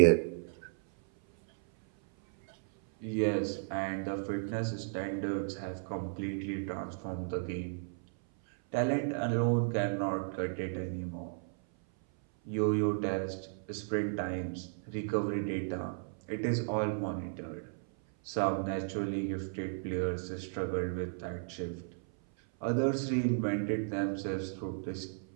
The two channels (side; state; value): left; silent; 55 dB below the other